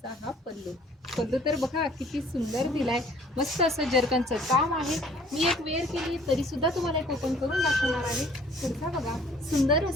हा पल्लू तर बघा किती सुंदर दिलाय, मस्त असं जर्कनचं काम आहे। मी एक वेअर केली तरी सुद्धा तुम्हाला एक ओपन करून दाखवणार आहे। पुढचा बघा सुंदर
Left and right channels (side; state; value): both; normal; correlation 0.56